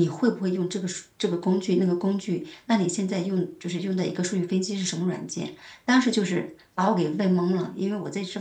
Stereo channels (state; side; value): identical; both; correlation 1.00